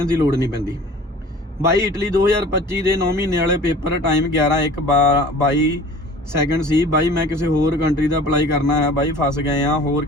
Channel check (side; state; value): both; normal; correlation 0.45